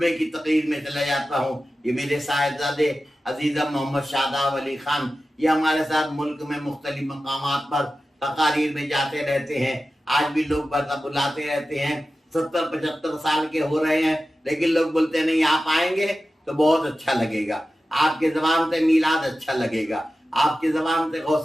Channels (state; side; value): normal; both; correlation 0.94